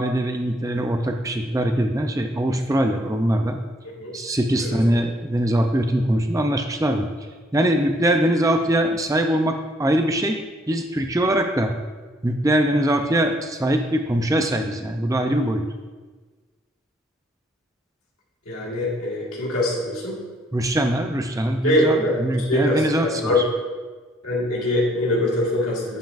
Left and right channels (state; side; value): normal; both; correlation 0.66